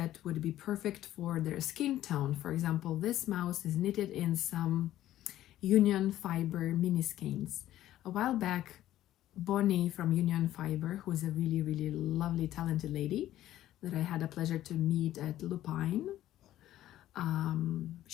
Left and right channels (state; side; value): quieter; right; 13.4 dB